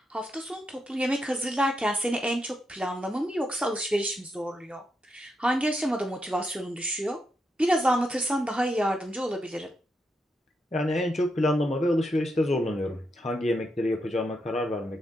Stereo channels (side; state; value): both; normal; correlation 0.82